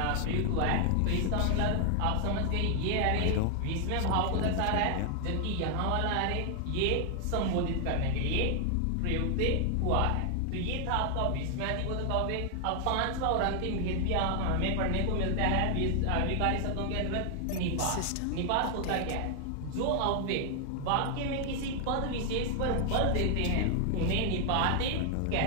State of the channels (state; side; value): different; both; correlation 0.00